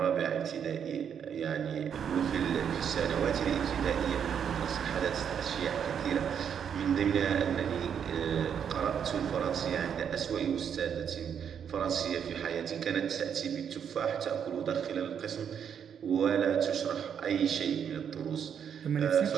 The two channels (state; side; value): quieter; left; 8.0 dB